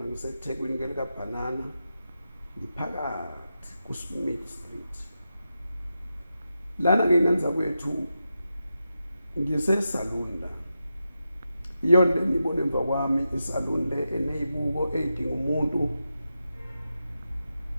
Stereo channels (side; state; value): both; inverted; correlation -0.89